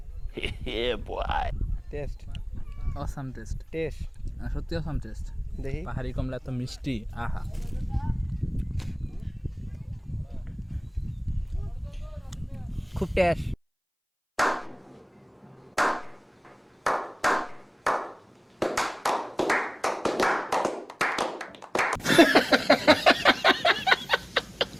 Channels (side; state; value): both; identical; correlation 1.00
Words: হে বয়, টেস্ট অসাম টেস্ট, টেস্ট সত্যি অসাম টেস্ট। দেখি। পাহাড়ি কমলা এত মিষ্টি, আহা। খুব টেস্ট।